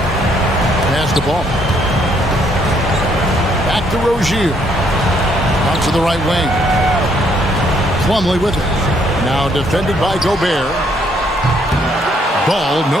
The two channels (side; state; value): both; normal; correlation 0.69